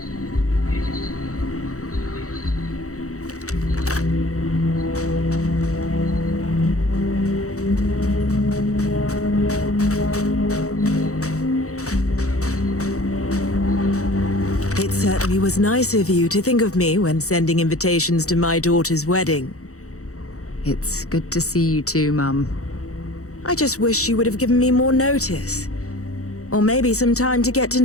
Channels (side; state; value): right; late; 0.65 ms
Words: It certainly was nice of you to think of me when sending invitations to my daughter's wedding. It's good to see you too, Mum. I just wish you would have given me more notice. Or maybe some time to get to